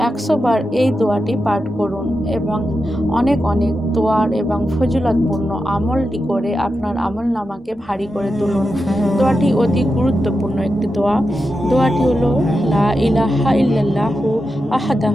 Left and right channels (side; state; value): both; normal; correlation 0.89